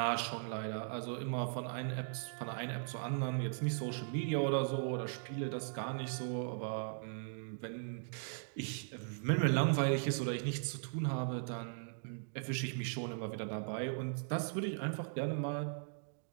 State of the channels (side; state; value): left; silent; digital silence